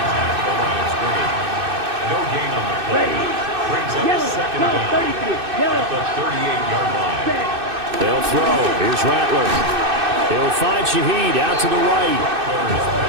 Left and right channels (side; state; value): left; late; 2.6 ms